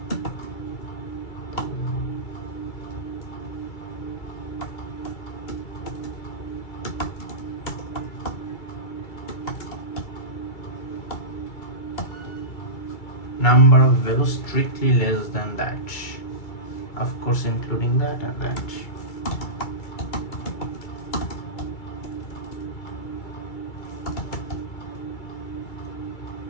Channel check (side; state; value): right; late; 2.3 ms